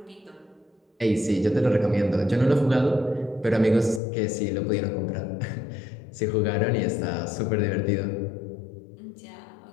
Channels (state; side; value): drops out; right; at 4.0 s